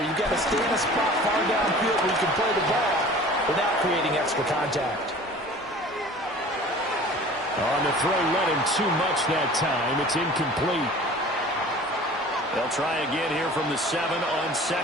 You've got to stay in a spot far downfield where you can play the ball without creating extra contact. On the throw, let him too much that time. It's incomplete. They'll try again here from the 7 on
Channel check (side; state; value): both; normal; correlation 0.44